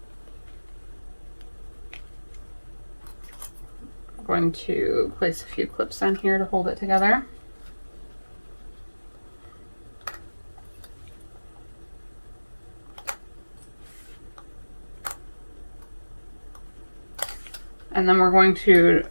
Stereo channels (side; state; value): both; inverted; correlation -1.00